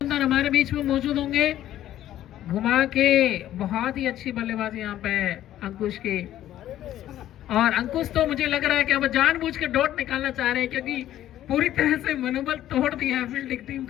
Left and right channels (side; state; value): right; quieter; 12.6 dB